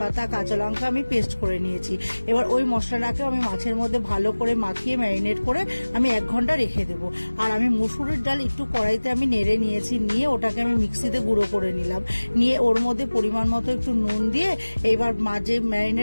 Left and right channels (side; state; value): both; inverted; correlation -1.00